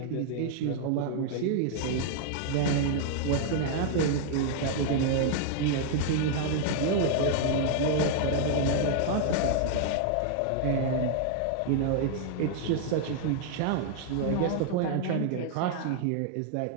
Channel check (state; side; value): different; both; correlation 0.00